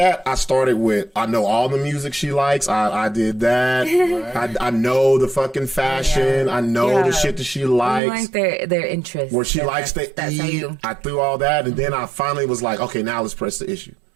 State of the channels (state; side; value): drops out; left; at 8.0 s